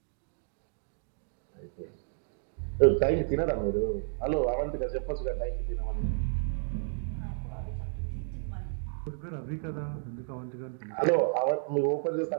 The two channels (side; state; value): left; silent; digital silence